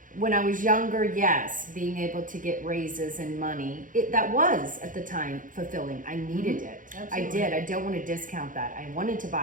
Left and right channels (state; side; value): late; left; 0.39 ms